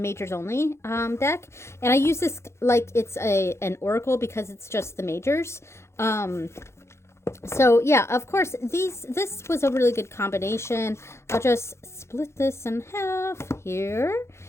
only deck, and I use this like it's an oracle because it's just the majors. So yeah, of course this was a really good combination. I'll just split this in half here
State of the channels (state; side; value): late; right; 0.13 ms